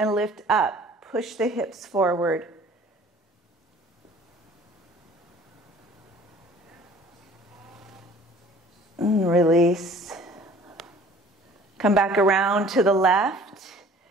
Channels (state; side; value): normal; both; correlation 0.51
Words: lift up. Push the hips forward. And release. Come back around to the left.